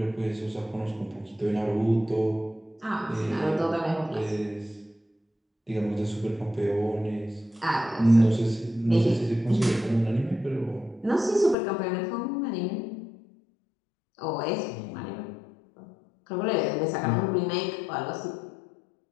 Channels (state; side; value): drops out; right; at 11.6 s